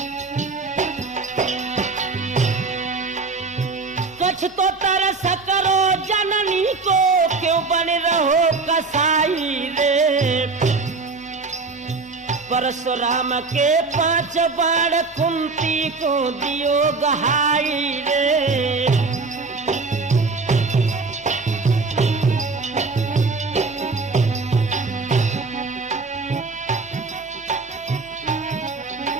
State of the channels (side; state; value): left; quieter; 4.1 dB